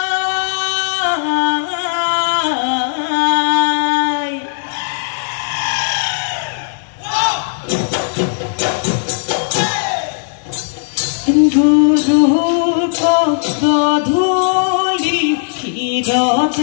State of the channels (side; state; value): right; silent; digital silence